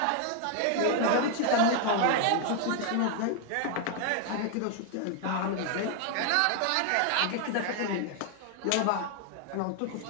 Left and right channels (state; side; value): different; both; correlation 0.00